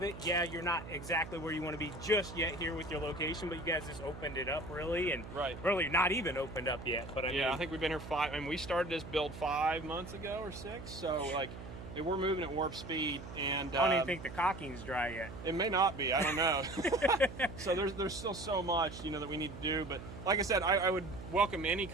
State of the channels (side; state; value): right; noise; hum, 12 dB below the sound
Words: it. Yeah, you're not exactly where you want to be just yet here with your location, but you guys just opened it up really, and really not even opened up yet. But I think we've been here and we started this build 5 months ago or 6. So like, we're moving at warp speed, and I don't even think the caulking's dry yet. It may not be. I don't know. So there's still so much that we need to do. But like I said, I would welcome any